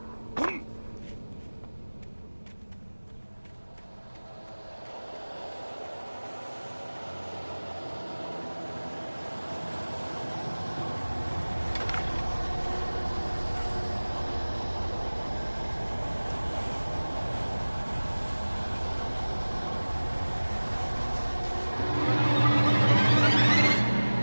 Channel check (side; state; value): both; inverted; correlation -1.00